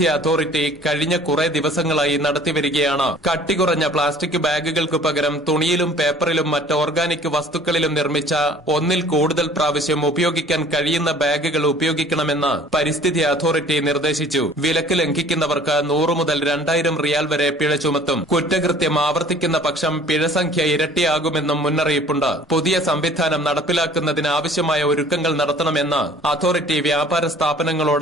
അതോറിറ്റി കഴിഞ്ഞ കുറെ ദിവസങ്ങളായി നടത്തിവരികയാണ്. കട്ടികുറഞ്ഞ പ്ലാസ്റ്റിക് ബാഗുകൾക്ക് പകരം തുണിയിലും പേപ്പറിലും മറ്റ് ഓർഗാനിക് വസ്തുക്കളിലും നിർമ്മിച്ച ഒന്നിൽ കൂടുതൽ പ്രാവശ്യം ഉപയോഗിക്കാൻ കഴിയുന്ന ബാഗുകൾ ഉപയോഗിക്കണമെന്ന് പരിസ്ഥിതി അതോറിറ്റി നിർദ്ദേശിച്ചു. വിലക്ക് ലംഘിക്കുന്നവർക്ക് 100 മുതൽ 2000 റിയാൽ വരെ പിഴ ചുമത്തും. കുറ്റകൃത്യം ആവർത്തിക്കുന്ന പക്ഷം പിഴസംഖ്യ ഇരട്ടിയാകുമെന്നും മുന്നറിയിപ്പുണ്ട്. പുതിയ സംവിധാനം നടപ്പിലാക്കുന്നതിന് ആവശ്യമായ ഒരുക്കങ്ങൾ നടത്തണമെന്ന് അതോറിറ്റി വ്യാപാര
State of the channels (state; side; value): normal; both; correlation 0.51